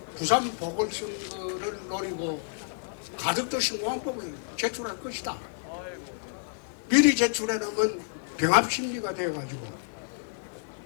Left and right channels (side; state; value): right; silent; 58 dB below the other